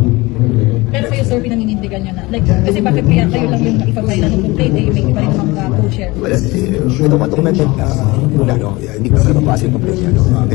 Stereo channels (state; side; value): quieter; right; 22.2 dB